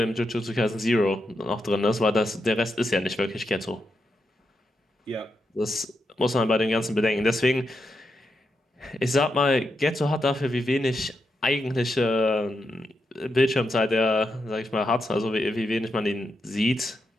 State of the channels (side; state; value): both; normal; correlation 0.85